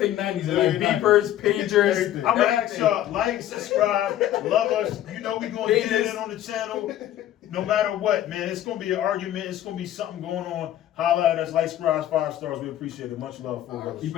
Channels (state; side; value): quieter; right; 12.4 dB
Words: 90s. They like Yeah, beepers, pagers. Everything. I'm gonna ask y'all, like, subscribe, love us. You know we gonna get it in on the channel. No matter what, man. It's gonna be an argument. It's gonna be something going on. Holla at us, like, subscribe, 5 stars. We appreciate it. Much love for us. Keep